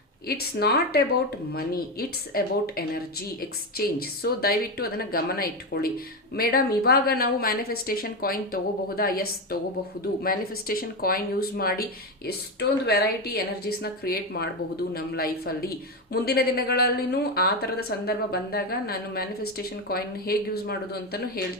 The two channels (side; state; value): both; normal; correlation 0.13